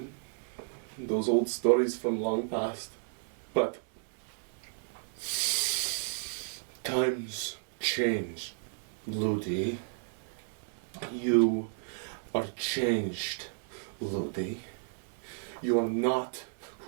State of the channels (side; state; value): left; silent; digital silence